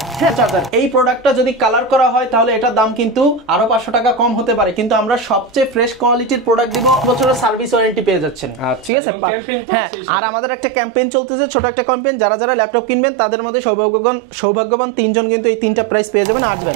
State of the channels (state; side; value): drops out; left; at 8.9 s